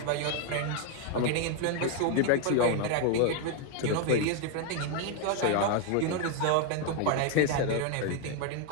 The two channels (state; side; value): different; both; correlation 0.01